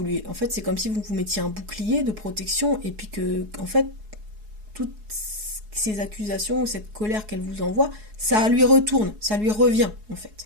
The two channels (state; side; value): late; left; 4.7 ms